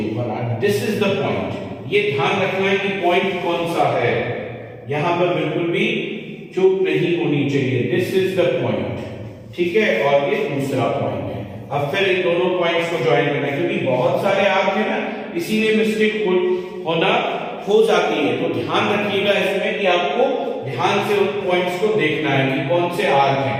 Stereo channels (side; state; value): both; identical; correlation 1.00